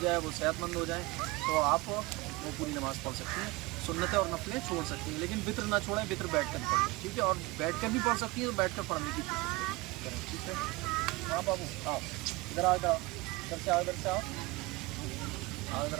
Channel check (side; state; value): left; quieter; 22.6 dB